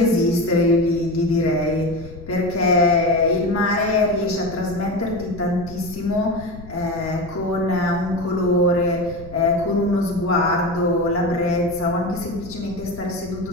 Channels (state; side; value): noise; left; rumble, 16 dB below the sound